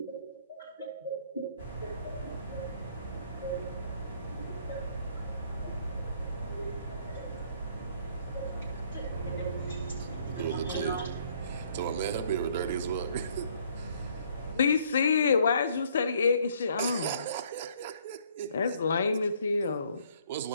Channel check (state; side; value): inverted; both; correlation -0.63